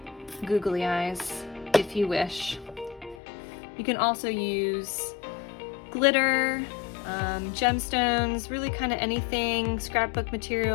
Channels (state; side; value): drops out; right; at 3.2 s